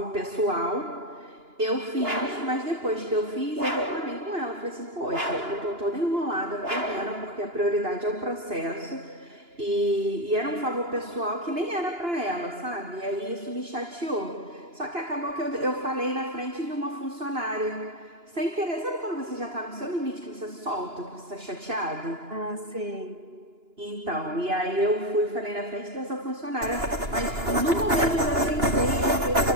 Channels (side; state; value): left; late; 2.9 ms